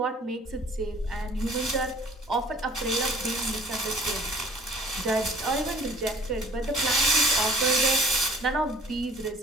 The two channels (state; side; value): normal; both; correlation 0.53